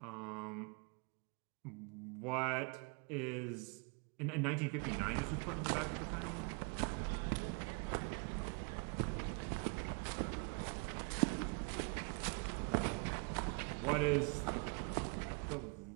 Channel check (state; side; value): quieter; left; 34.5 dB